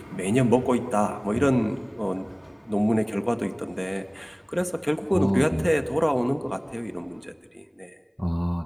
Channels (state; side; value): identical; both; correlation 1.00